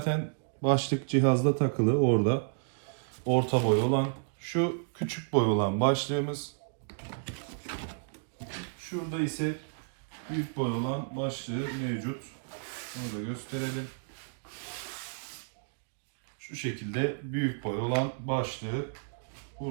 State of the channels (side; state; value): left; silent; digital silence